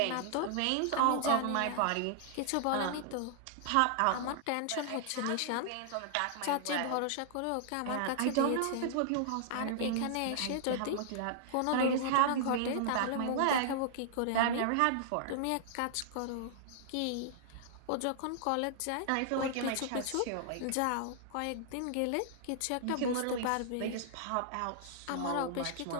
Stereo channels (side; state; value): both; different; correlation -0.01